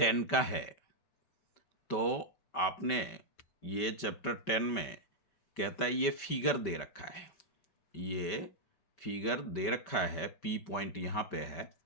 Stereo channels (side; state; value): right; late; 5.1 ms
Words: का है। तो आपने ये चैप्टर 10 में कहता है ये फिगर दे रखा है, ये फिगर दे रखा है, पी पॉइंट यहाँ पे है